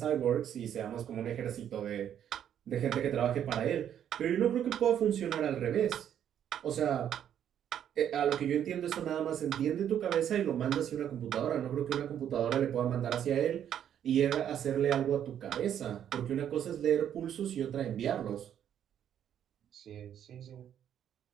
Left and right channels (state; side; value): quieter; left; 9.7 dB